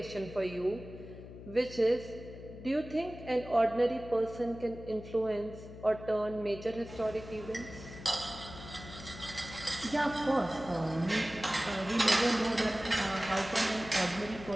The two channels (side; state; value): left; noise; hum, 14 dB below the sound